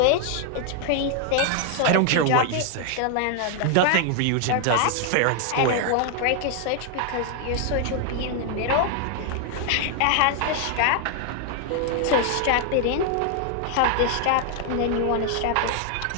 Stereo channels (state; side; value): different; both; correlation 0.00